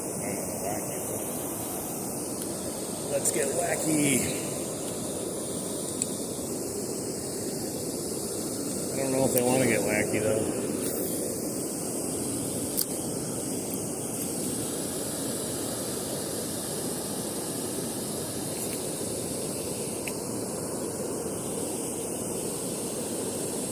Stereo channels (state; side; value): identical; both; correlation 1.00